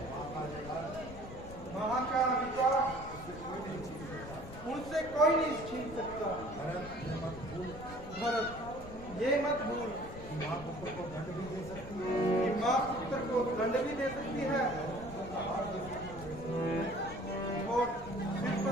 वहां का अधिकार उनसे कोई नहीं छीन सकता। भरत, ये मत भूल कि माँ पुत्र को दंड भी दे सकती है और सिर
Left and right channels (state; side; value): noise; left; rumble, 13 dB below the sound